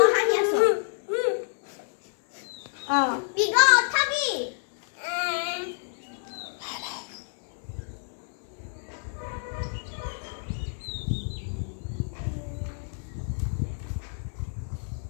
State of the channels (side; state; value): right; silent; 59 dB below the other